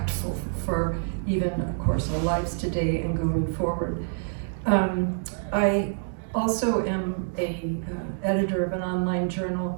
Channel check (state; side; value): silent; left; digital silence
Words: for even, of course, our lives today and going forward. I also am a editor of an online